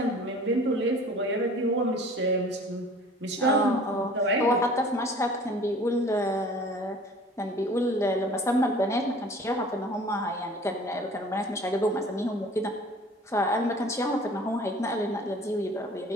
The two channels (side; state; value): both; normal; correlation 0.47